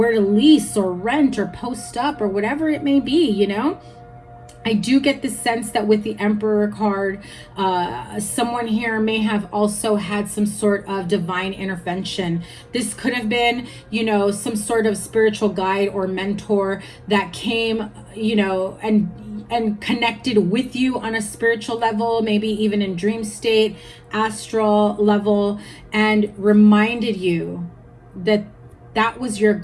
to lease or rent or post up or whatever it may be, you know. I do get the sense that with the Emperor card, someone here may have also had some sort of divine intervention. This could have been, you know, some sort of spiritual guide or mentor that came, you know, and connected with you on a spiritual level, maybe even in dream state, astral level, and reminded you that that was your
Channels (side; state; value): both; identical; correlation 1.00